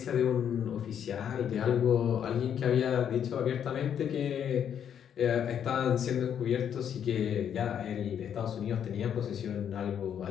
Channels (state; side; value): quieter; right; 8.8 dB